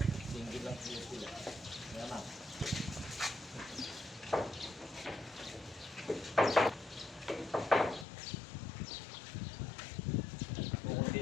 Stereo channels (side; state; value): right; drops out; at 8.1 s